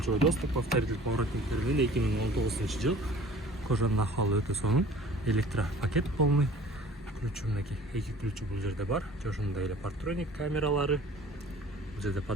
доступ, повторитель поворотниктер менен 2019 жыл. Кожанын акыбалы өтө сонун. Электропакет полный. Ключу мынакей, эки ключу бул жерде бар. Ошондой эле партроник камералары. Бул жерде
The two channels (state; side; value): normal; both; correlation 0.47